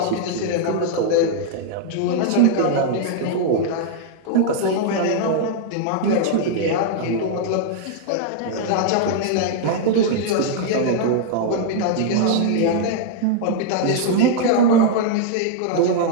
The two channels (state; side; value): different; both; correlation -0.01